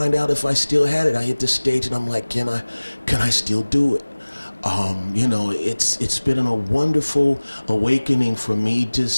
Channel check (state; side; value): inverted; both; correlation -1.00